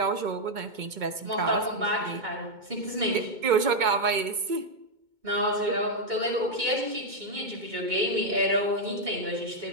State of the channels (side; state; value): left; late; 2.2 ms